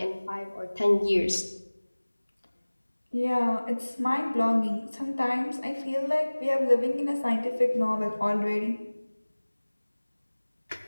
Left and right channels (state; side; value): inverted; both; correlation -1.00